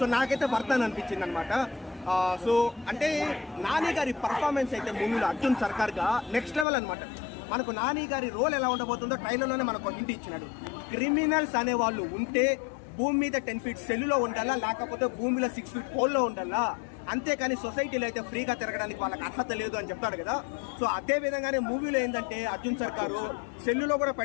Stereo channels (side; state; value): right; drops out; at 6.7 s